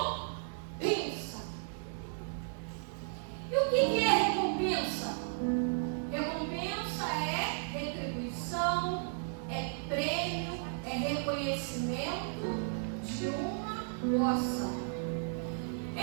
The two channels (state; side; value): silent; left; digital silence